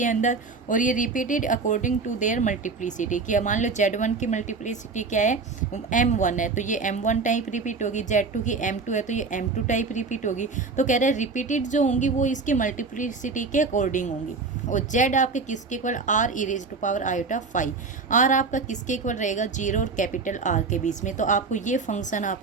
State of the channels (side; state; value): left; quieter; 4.4 dB